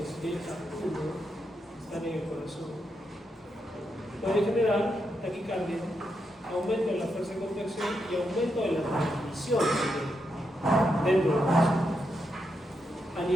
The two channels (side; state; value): both; normal; correlation 0.83